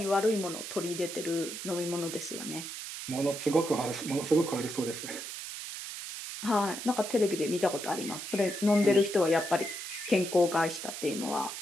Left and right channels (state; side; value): noise; right; hiss, 8 dB below the sound